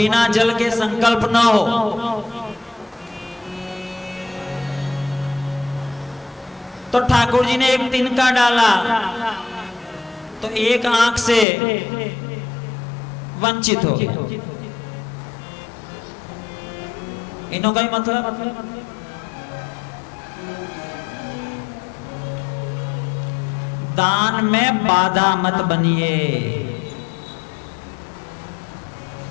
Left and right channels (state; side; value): drops out; right; at 11.5 s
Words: जल के संकल्प ना हो। तो ठाकुर जी ने एक तिनका डाला तो एक आंख से वंचित हो गया। इन्हों का ही मतलब दान में बाधा मत बनिए